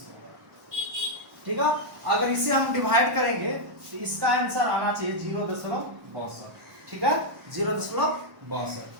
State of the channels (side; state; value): left; late; 1.1 ms